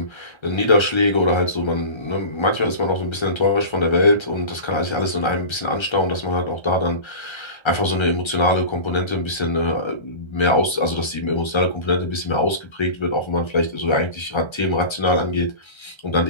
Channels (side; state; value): right; late; 1.3 ms